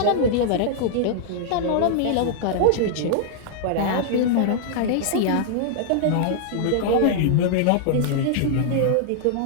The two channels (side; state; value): both; different; correlation -0.01